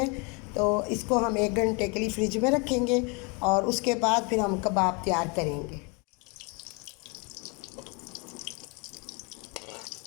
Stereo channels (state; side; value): quieter; right; 31.9 dB